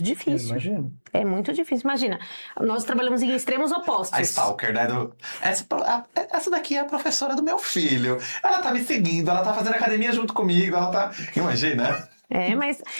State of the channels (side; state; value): both; inverted; correlation -1.00